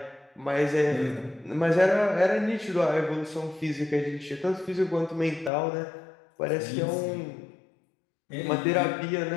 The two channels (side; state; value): right; drops out; at 5.5 s